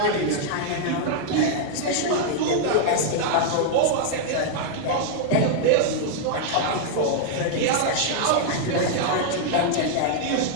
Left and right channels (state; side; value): different; both; correlation 0.00